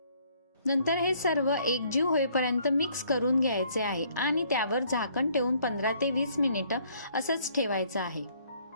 नंतर हे सर्व एकजीव होईपर्यंत मिक्स करून घ्यायचे आहे आणि त्यावर झाकण ठेवून 15 ते 20 मिनिटं असंच ठेवायचं आहे.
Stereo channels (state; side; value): inverted; both; correlation -0.63